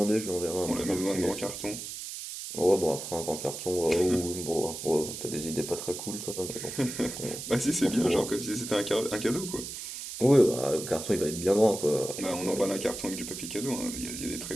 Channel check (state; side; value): noise; right; hiss, 8 dB below the sound